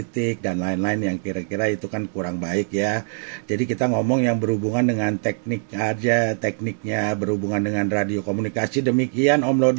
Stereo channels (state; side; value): silent; left; 64 dB below the other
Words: dan lain-lain yang kira-kira itu kan kurang baik ya. Jadi kita ngomong yang berhubungan dengan teknik aja, tekniknya berhubungan dengan radio komunikasi. Demikian Om